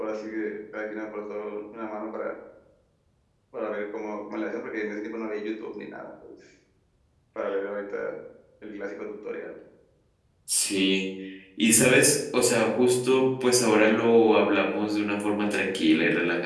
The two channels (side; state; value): both; identical; correlation 1.00